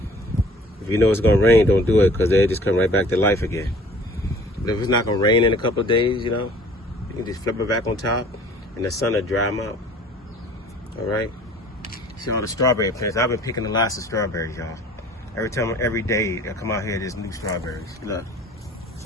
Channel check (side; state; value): both; normal; correlation 0.50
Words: If you know it's gonna rain, don't do it because they just come right back to life again. But if it's not gonna rain in a couple of days, you know, you can just flip it back on top and the sun will dry them out. All right. See all the strawberry plants. I've been picking lots of strawberries, y'all. Every day I come out here, there's new strawberries. Look,